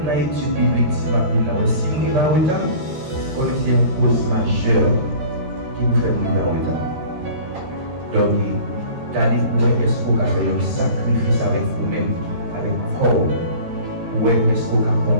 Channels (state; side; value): late; left; 13 ms